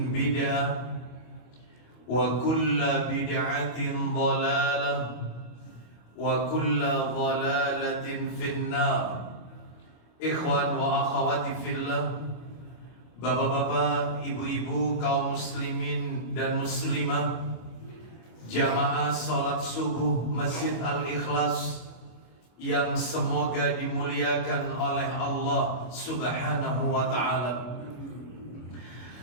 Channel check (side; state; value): right; late; 25 ms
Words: bid'ah wa kullu bid'atin dhalalah wa kullu dhalalatin finnar. Ikhwan wa akhwati fillah, bapak-bapak, ibu-ibu, kaum muslimin dan muslimah, jamaah salat subuh Masjid Al-Ikhlas yang semoga dimuliakan oleh Allah Subhanahu wa ta'ala.